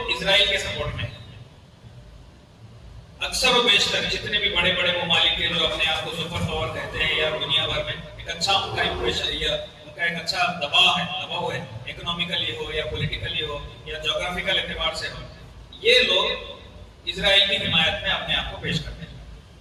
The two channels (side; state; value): both; identical; correlation 1.00